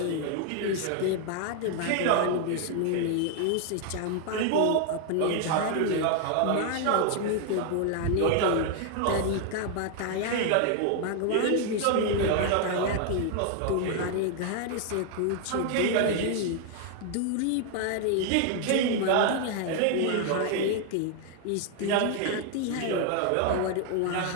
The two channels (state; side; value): different; both; correlation 0.00